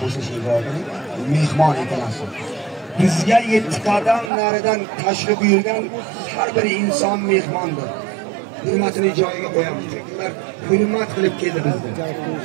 bo'lsa shegirdi, mehmon ekansiz. Bizga 7 qadam naridan tashrif buyurgan har bir inson mehmondir. Hurmatini joyiga qo'yamiz. Ular hurmat qilib keldi bizga.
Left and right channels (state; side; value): drops out; left; at 4.3 s